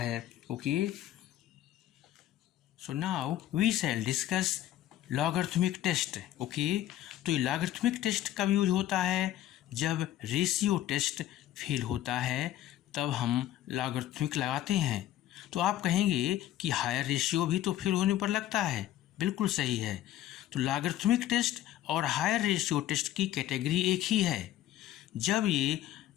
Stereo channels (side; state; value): right; quieter; 13.2 dB